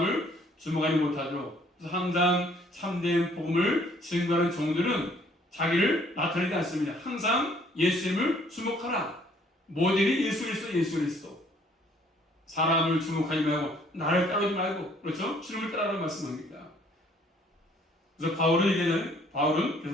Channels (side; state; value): both; normal; correlation 0.61